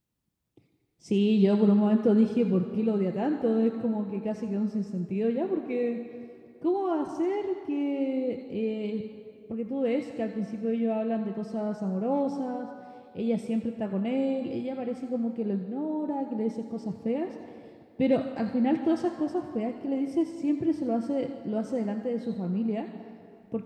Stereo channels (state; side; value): identical; both; correlation 1.00